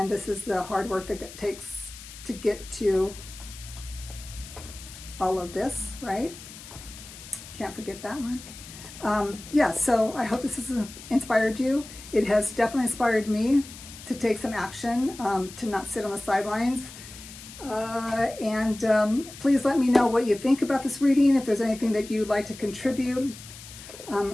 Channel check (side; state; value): left; noise; hiss, 15 dB below the sound